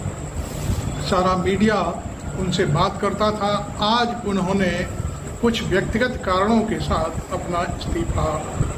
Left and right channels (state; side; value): identical; both; correlation 1.00